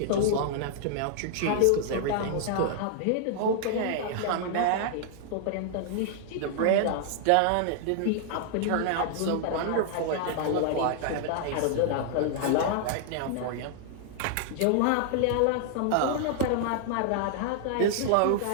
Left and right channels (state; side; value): different; both; correlation -0.01